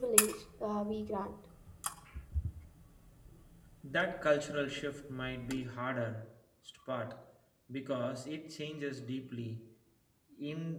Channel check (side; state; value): both; identical; correlation 1.00